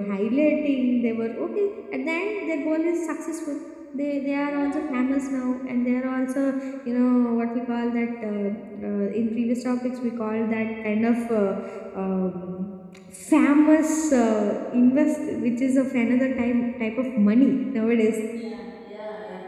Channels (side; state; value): both; identical; correlation 1.00